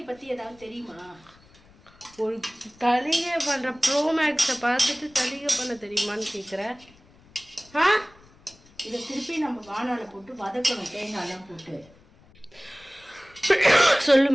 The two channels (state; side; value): noise; left; rumble, 27 dB below the sound